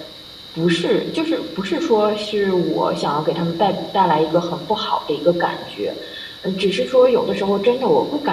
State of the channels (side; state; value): both; identical; correlation 1.00